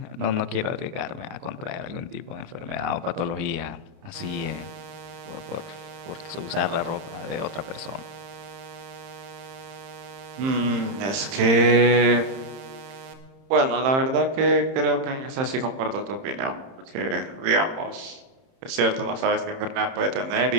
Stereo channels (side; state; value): left; late; 31 ms